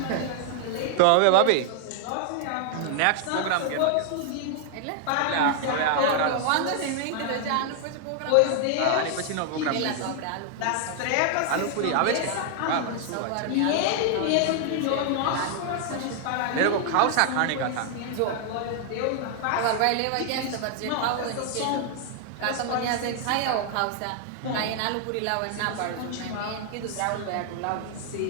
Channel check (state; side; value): different; both; correlation 0.00